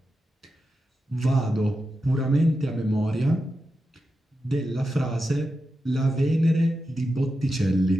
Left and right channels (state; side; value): normal; both; correlation 0.89